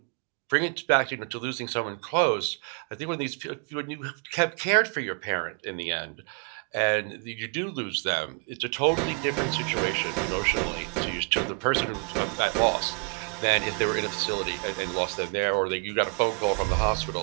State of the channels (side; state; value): left; quieter; 37.8 dB